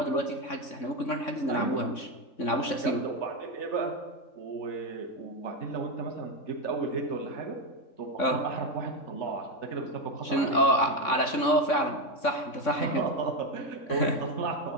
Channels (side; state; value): right; late; 3.6 ms